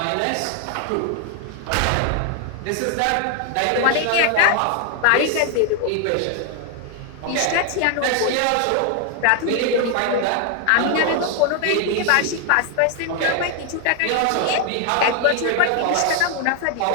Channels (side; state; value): both; different; correlation 0.00